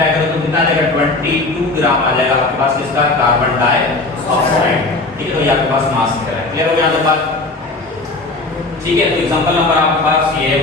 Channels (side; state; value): right; quieter; 3.2 dB